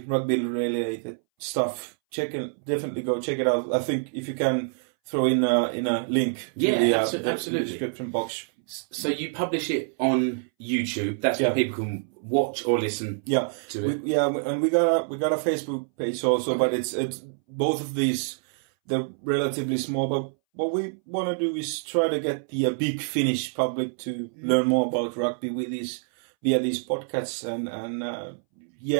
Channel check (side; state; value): left; silent; 61 dB below the other